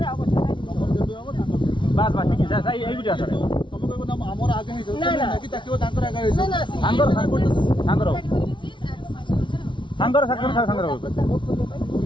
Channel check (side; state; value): right; late; 0.24 ms